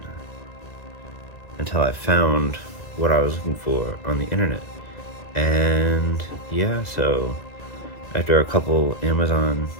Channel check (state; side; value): late; right; 2.0 ms